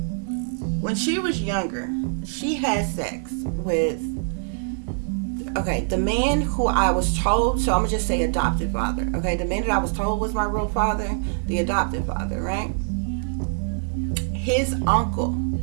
when she was younger, she had sex with, okay, the man who I was told, so I'm going to just say adopted father, okay? The man that I was told was my real father, the adopted father, right? His uncle,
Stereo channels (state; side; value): silent; left; digital silence